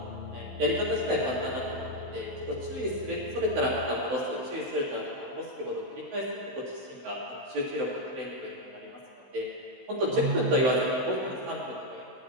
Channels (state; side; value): late; left; 16 ms